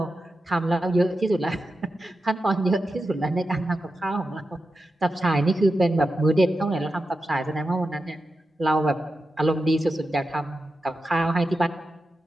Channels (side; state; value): both; normal; correlation 0.90